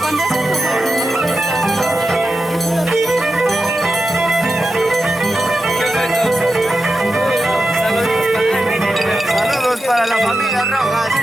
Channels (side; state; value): both; normal; correlation 0.90